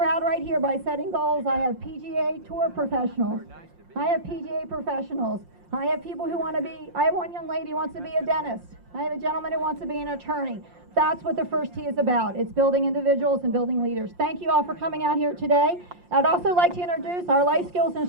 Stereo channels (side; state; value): left; late; 5.7 ms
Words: right here, by setting goals, I have PGA Tour professionals. I have PGA professionals. I have people who want to be, I have one young lady who wants to be a dentist. I have a gentleman who wants to be an attorney. That's what the first T is about. It's building individuals and building leaders. Thank you all for coming out here today. I'd also like to introduce our life skills